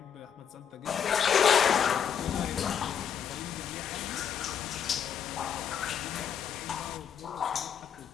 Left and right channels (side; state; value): right; quieter; 8.1 dB